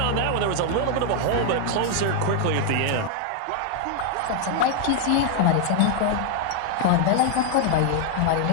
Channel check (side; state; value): both; different; correlation 0.00